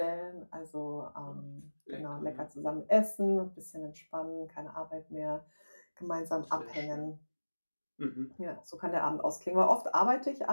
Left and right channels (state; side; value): inverted; both; correlation -1.00